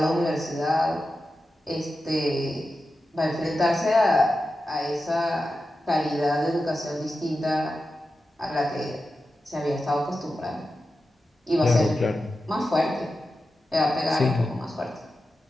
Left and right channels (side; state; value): both; normal; correlation 0.91